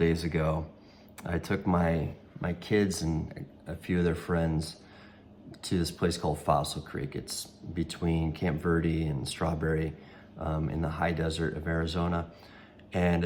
ago. I took my kids and a few of their friends to this place called Fossil Creek. It's between Camp Verde and Strawberry in the high desert of Arizona. And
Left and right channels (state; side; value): identical; both; correlation 1.00